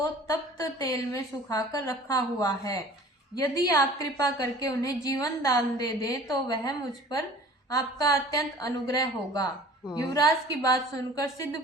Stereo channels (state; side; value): normal; both; correlation 0.47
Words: तप्त तेल में सुखाकर रखा हुआ है। यदि आप कृपा करके उन्हें जीवन दान दे दें तो वह मुझ पर आपका अत्यंत अनुग्रह होगा। युवराज की बात सुनकर सिद्ध